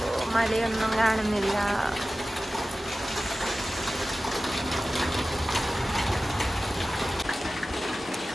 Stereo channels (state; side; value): normal; both; correlation 0.96